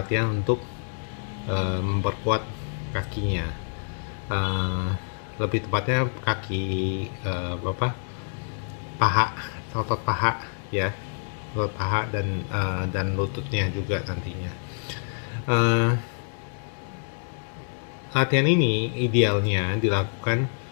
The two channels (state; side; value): silent; right; digital silence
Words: untuk memperkuat kakinya. Uh, Lebih tepatnya kaki paha, otot paha ya, otot paha dan lututnya juga nantinya. Uh, Latihan ini idealnya dilakukan